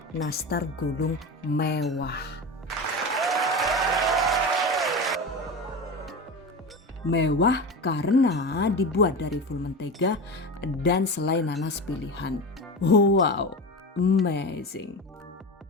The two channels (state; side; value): normal; both; correlation 0.26